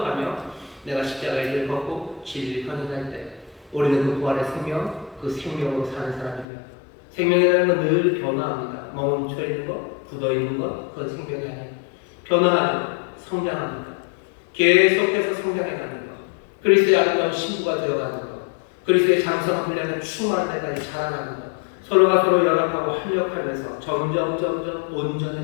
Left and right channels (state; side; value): drops out; right; at 6.5 s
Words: 내가 십자가의 일을 벗고 진리를 헌신할 때 우리는 그 부활의 생명, 그 생명으로 사는 사람이며 생명이라는 건 늘 변화합니다. 멈춰 있는 것, 굳어 있는 것, 그건 생명이 아니에요. 변화하죠. 성장합니다. 계속해서 성장해가는 것, 그리스도의 아름다운 신부가 되어가는 것, 그리스도의 장성한 분량을 충만한 데까지 자라나는 것, 서로가 서로 연합하고 합력하면서 점점